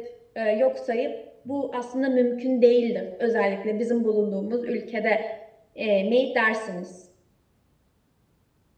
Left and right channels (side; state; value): both; identical; correlation 1.00